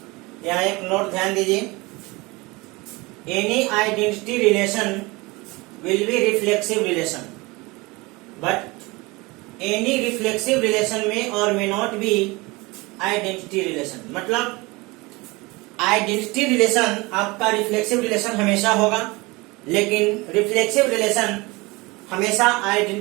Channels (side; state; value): left; quieter; 23.9 dB